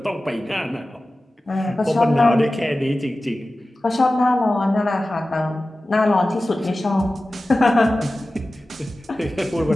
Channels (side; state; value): both; normal; correlation 0.95